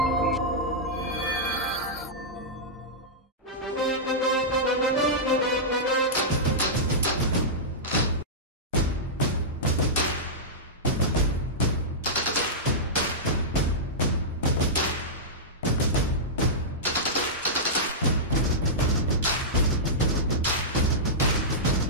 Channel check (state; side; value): normal; both; correlation -0.13